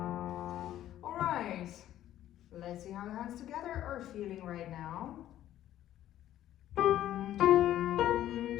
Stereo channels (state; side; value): quieter; right; 12.6 dB